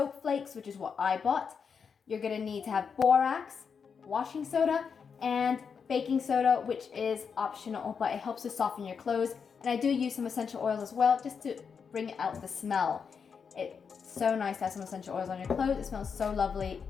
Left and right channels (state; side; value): quieter; right; 6.2 dB